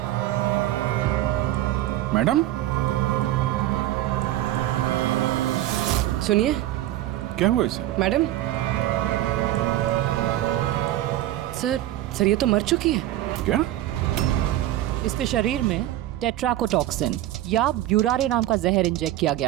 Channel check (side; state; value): left; quieter; 14.3 dB